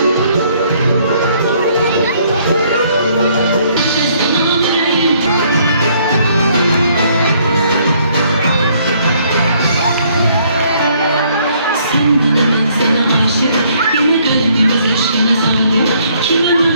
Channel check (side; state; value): both; inverted; correlation -0.65